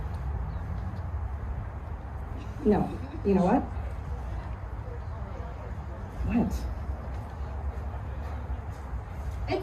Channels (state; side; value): identical; both; correlation 1.00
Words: No. You know what? What?